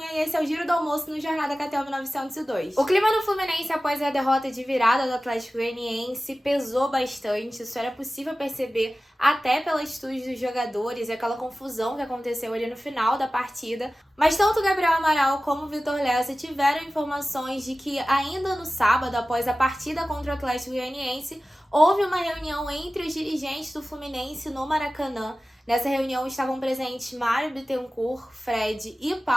e esse é o Giro do Almoço no Jornada KTO 1902. O clima no Fluminense após a derrota de virada do Atlético Goianiense pesou bastante, isso era possível perceber até pelas atitudes dos jogadores e aquela confusão que aconteceu ali no final da partida. Mas tanto Gabriel Amaral como o Vitor Lessa tiveram informações de que ainda no sábado, após a partida contra o Atlético Goianiense, houve uma reunião entre os dirigentes do Fluminense no Maracanã. Nessa reunião estavam presentes Mário Bittencourt, Fred e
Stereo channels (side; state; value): both; normal; correlation 0.96